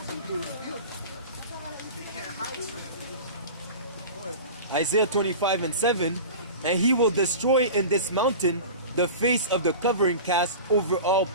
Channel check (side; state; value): both; inverted; correlation -0.33